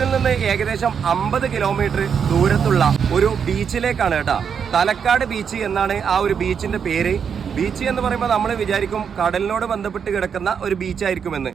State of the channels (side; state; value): left; quieter; 7.1 dB